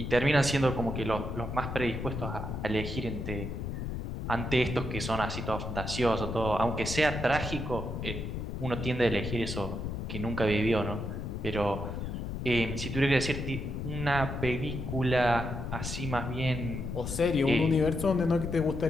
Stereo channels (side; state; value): left; noise; rumble, 5 dB below the sound